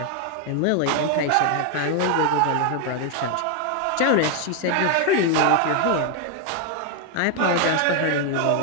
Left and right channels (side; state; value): both; different; correlation 0.01